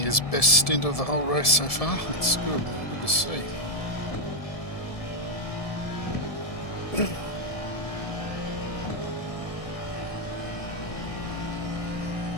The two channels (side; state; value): right; late; 1.7 ms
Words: best stint of the whole race so far. It's good. Good to see.